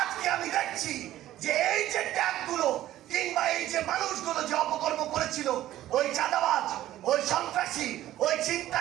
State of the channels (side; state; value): left; quieter; 13.8 dB